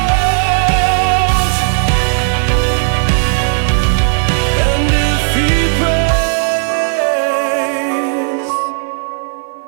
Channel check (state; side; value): silent; left; digital silence